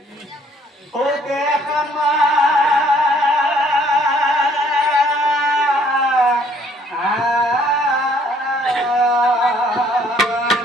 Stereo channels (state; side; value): normal; both; correlation 0.62